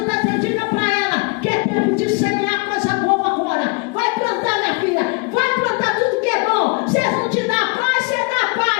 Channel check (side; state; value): right; quieter; 30.1 dB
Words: está pedindo para ela que é tempo de semear coisa boa agora. Vai plantar, minha filha. Vai plantar tudo que é bom. Se não te dá paz, você dá